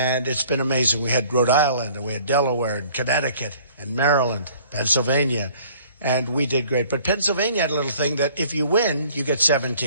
it's been amazing. We had Rhode Island, and we had Delaware, and Connecticut, and Maryland, Pennsylvania. And we did great. But Pennsylvania had a little thing that if you win, you get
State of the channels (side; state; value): both; inverted; correlation -0.54